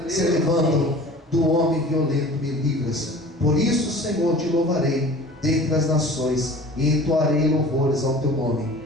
se levantam. Do homem violento me livras. Por isso, Senhor, te louvarei dentre as nações, e entoarei louvores ao teu nome.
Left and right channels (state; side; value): normal; both; correlation 0.43